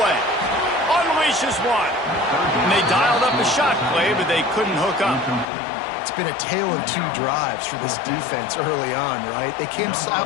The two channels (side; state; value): right; drops out; at 5.5 s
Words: Unleashes one. And they dialed up a shot play, but they couldn't hook up. It's been a tale of two drives for this defense early on, right? They came